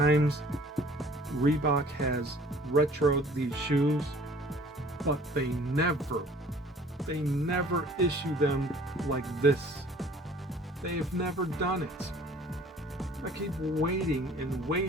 Reebok has retroed these shoes, but they never issue them like this? They've never done it. I keep waiting and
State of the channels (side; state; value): both; normal; correlation 0.52